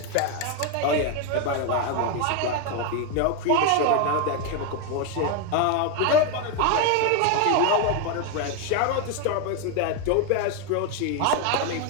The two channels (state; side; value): different; both; correlation 0.02